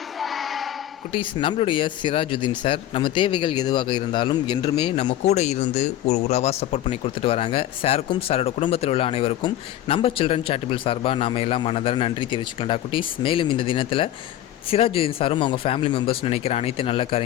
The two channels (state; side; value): quieter; right; 12.9 dB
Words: குட்டீஸ், நம்மளுடைய சிராஜுதீன் சார் நம்ம தேவைகள் எதுவாக இருந்தாலும் என்றுமே நம்ம கூட இருந்து ஒரு உறவாக சப்போர்ட் பண்ணி கொடுத்துட்டு வராங்க. சாருக்கும் சாரோட குடும்பத்தில் உள்ள அனைவருக்கும் நம்ம சில்ட்ரன் சேரிட்டபிள் சார்பாக நாம் எல்லாம் மனதார நன்றி தெரிவிச்சுக்கலாம்டா குட்டீஸ். மேலும் இந்த தினத்தில் சிராஜுதீன் சாரும் அவங்க ஃபேமிலி மெம்பர்ஸ் நினைக்கிற அனைத்து நல்ல